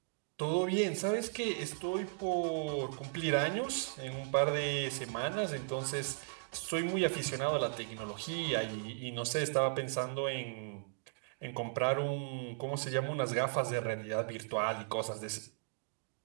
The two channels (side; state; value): left; silent; digital silence